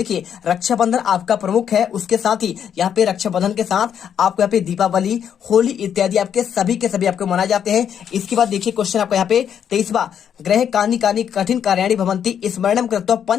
रक्षाबंधन आपका प्रमुख है, उसके साथ ही यहाँ पे रक्षाबंधन के साथ आपको यहाँ पे दीपावली, होली इत्यादि आपके सभी के सभी आपको मनाए जाते हैं। इसके बाद देखिए क्वेश्चन आपको यहाँ पे 23वां, ग्रह कानी कानी कठिन कार्याणी भवंती स्मरणम कृत्वा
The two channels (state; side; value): quieter; right; 8.6 dB